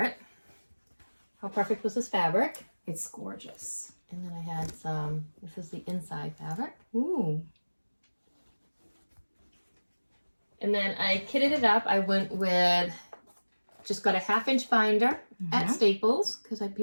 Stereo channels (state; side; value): inverted; both; correlation -1.00